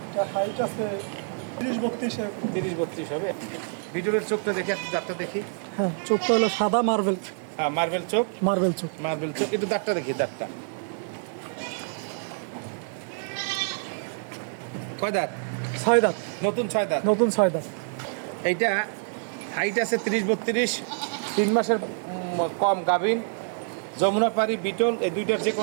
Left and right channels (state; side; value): silent; left; digital silence